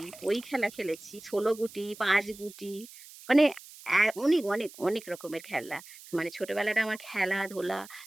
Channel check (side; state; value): right; noise; hiss, 18 dB below the sound